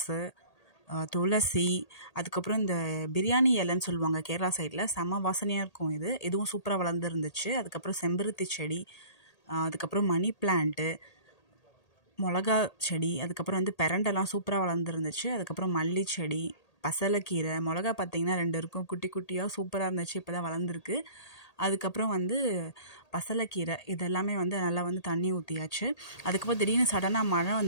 துளசி, அதுக்கப்புறம் இந்த பிரியாணி இலைன்னு சொல்லுவாங்க கேரளா சைடில், செம்ம வாசனையாக இருக்கும். இதுவும் சூப்பராக வளர்ந்துருந்துச்சு. அதுக்கப்புறம் செம்பருத்தி செடி, அதுக்கப்புறம் மணி பிளான்ட்டு, மிளகா செடி, அதுக்கப்புறம் பெரண்டெல்லாம் சூப்பராக வளர்ந்துருந்துச்சு. அதுக்கப்புறம் மல்லி செடி, பசலைக்கீரை, மிளகா பார்த்திங்கன்னா 2 இருக்கும், குட்டி குட்டியாக சூப்பராக இருந்துச்சு. இப்போ தான் வளர்ந்துருக்கு. அதுக்கப்புறம் பசலைக்கீரை இதெல்லாமே நல்லா தண்ணி ஊற்றியாச்சு. அதுக்கப்புறம் திடீர்னு சடனாக மழை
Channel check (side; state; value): right; late; 1.8 ms